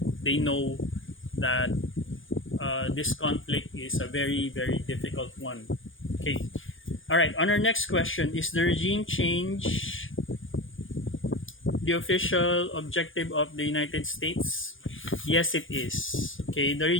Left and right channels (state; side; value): late; right; 0.58 ms